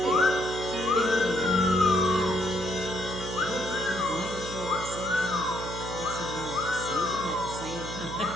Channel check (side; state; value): right; noise; hum, 9 dB below the sound